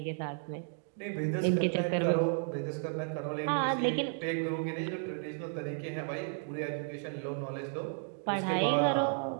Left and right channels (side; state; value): left; silent; 56 dB below the other